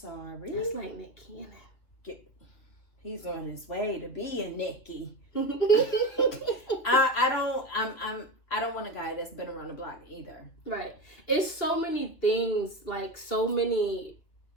That's like Nick Cannon. He's on his way to being Nicky. I don't want a guy that's been around the block either. Right. It's so many things, like it's so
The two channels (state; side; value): late; right; 2.8 ms